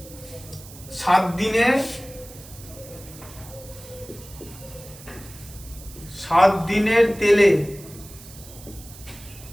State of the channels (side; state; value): right; noise; hiss, 18 dB below the sound